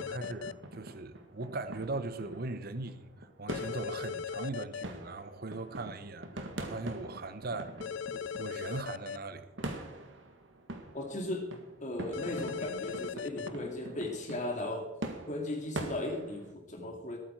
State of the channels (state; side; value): normal; both; correlation 0.21